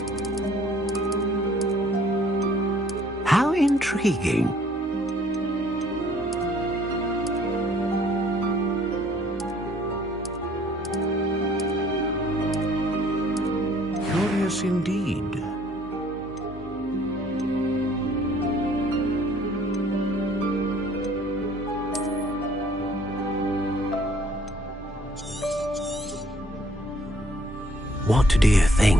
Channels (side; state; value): both; normal; correlation 0.60